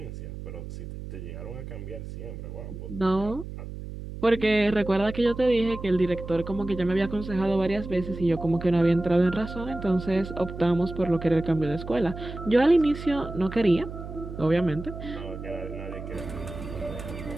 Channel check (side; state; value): right; noise; hum, 10 dB below the sound